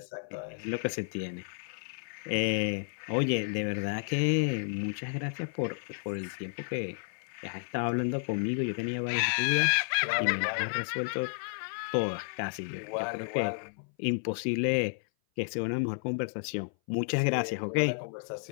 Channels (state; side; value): silent; right; 56 dB below the other